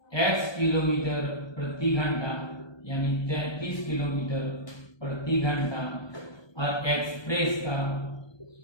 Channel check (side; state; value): right; late; 1.2 ms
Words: x किलोमीटर प्रति घंटा यानी 33 किलोमीटर प्रति घंटा, और एक्सप्रेस का